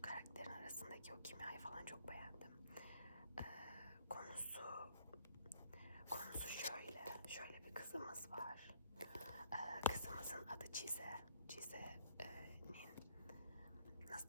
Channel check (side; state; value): both; inverted; correlation -0.61